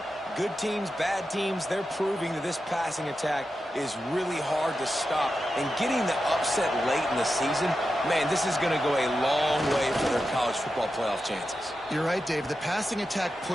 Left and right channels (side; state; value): both; normal; correlation 0.90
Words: Good teams, bad teams, they're proving that this passing attack is really hard to stop. And getting the upset late in the season, man, this is going to go a long way for their college football playoff chances. You're right, Dave. The passing attack